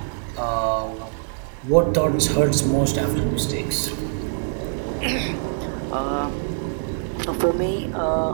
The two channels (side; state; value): left; silent; 60 dB below the other